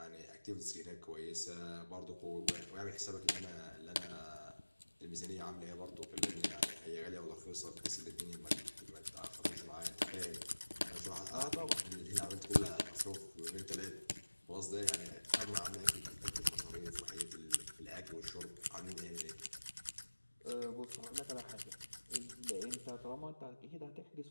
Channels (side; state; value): both; inverted; correlation -1.00